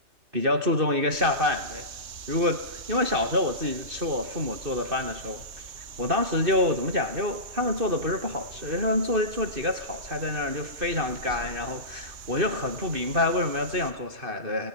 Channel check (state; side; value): late; left; 2.6 ms